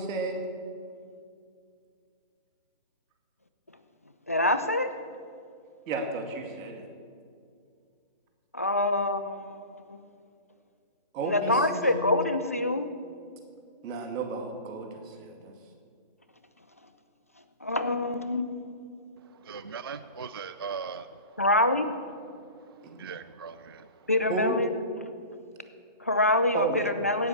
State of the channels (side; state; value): both; inverted; correlation -0.34